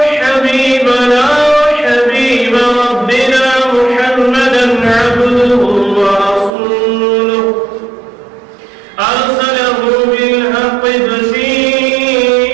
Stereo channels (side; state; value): left; drops out; at 6.5 s